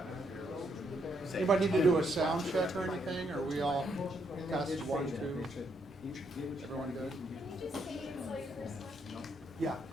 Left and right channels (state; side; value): normal; both; correlation 0.75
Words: Anybody need to do a sound check or anything? Or we all test 1, 2? Everyone good? Yeah.